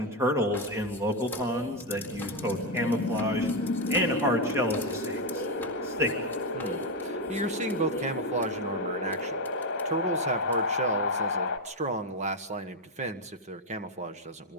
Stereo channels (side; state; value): both; normal; correlation 0.06